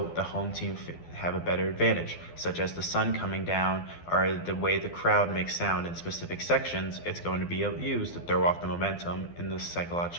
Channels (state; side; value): late; right; 12 ms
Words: the home team have a better advantage, such as the sun coming down or the way the crowd makes sound in specific sections. It's going to be used to throw off the momentum in the